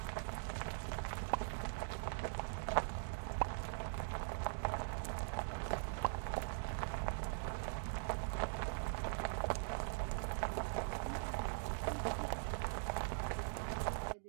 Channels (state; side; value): silent; left; digital silence